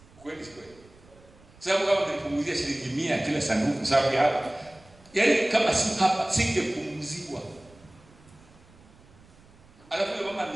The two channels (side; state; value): right; noise; rumble, 26 dB below the sound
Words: Kweli kweli. Sababu kama nilipunguzia shilingi 100 kila sanduku sababu ya hapa. Yaani kama si hapa singepunguzwa. Alafu mama